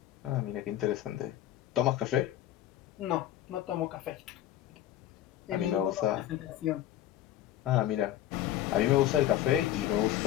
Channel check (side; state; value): right; quieter; 12.5 dB